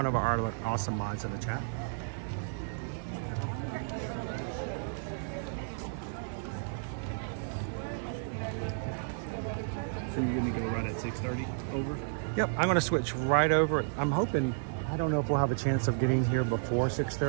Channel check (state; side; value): silent; left; digital silence